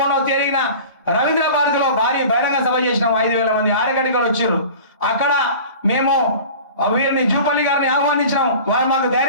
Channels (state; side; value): inverted; both; correlation -0.39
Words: తేదీన రవీంద్ర భారతిలో భారీ బహిరంగ సభ చేసినాం. 5,000 మంది ఆరగడ్డలు వచ్చారు. అక్కడ మేము వీరిని జూపల్లి గారిని ఆహ్వానించినాం. వారు మాకు